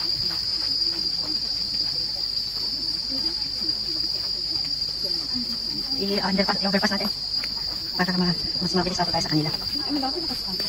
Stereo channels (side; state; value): right; noise; hum, 16 dB below the sound